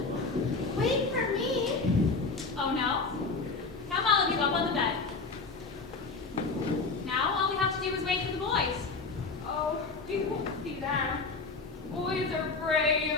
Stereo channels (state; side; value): quieter; right; 4.1 dB